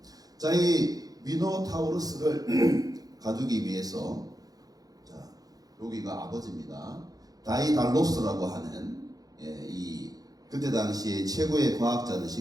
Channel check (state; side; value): late; left; 0.18 ms